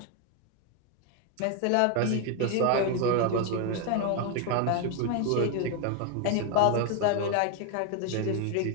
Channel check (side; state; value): both; different; correlation 0.01